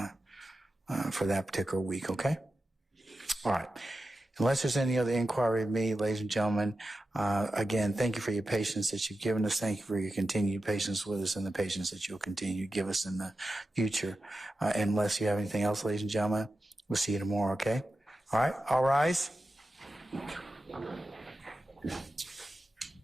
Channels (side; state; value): both; normal; correlation 0.92